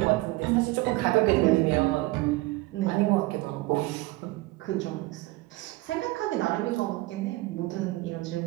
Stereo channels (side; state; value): left; quieter; 20.5 dB